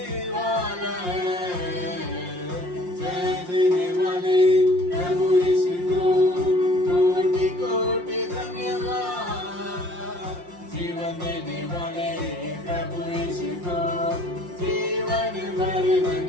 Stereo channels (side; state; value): left; late; 5.6 ms